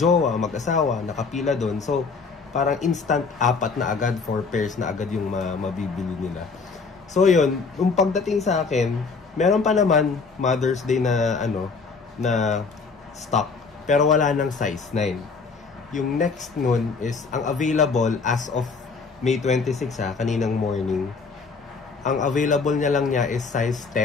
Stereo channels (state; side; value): quieter; right; 4.7 dB